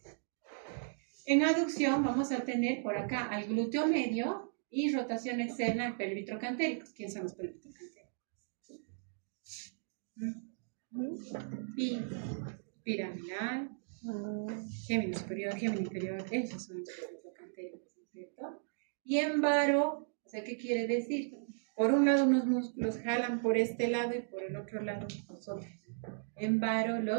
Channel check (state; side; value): silent; left; digital silence